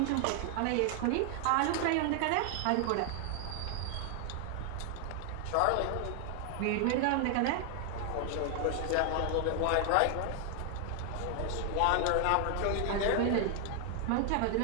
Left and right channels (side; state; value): both; different; correlation 0.00